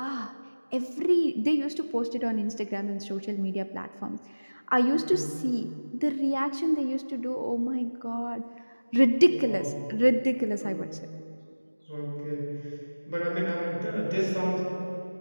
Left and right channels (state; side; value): inverted; both; correlation -1.00